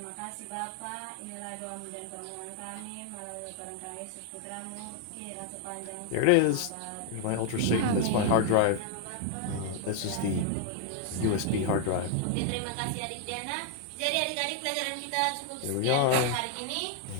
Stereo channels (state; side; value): different; both; correlation 0.00